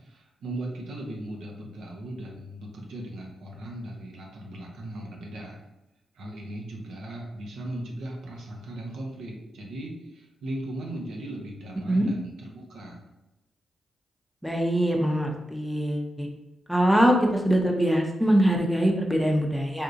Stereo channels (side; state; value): both; normal; correlation 0.90